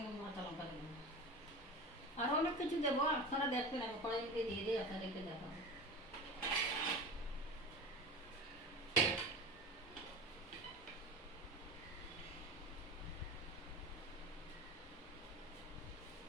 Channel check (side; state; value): both; normal; correlation 0.30